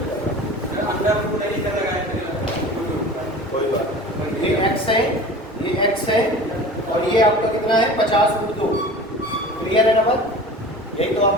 कर रहा है, कोई बात। ये x है, ये x है, और ये आपका कितना है? 50√2। क्लियर है ना बात? यही तो आप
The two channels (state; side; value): normal; both; correlation 0.38